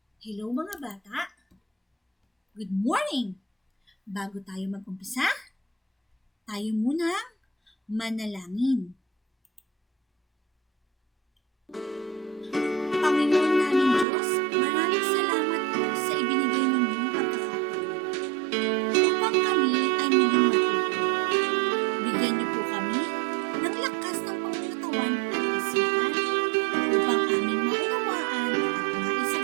Hello mga bata! Good morning! Bago tayo mag-umpisa, tayo muna manalangin. Panginoon namin Diyos, maraming salamat po sa ibinigay ninyong pagkakataon upang kami ay muling matuto. Bigyan niyo po kami ng lakas ng pangunatawan at isipan upang aming maunawaan at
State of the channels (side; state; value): left; drops out; at 14.1 s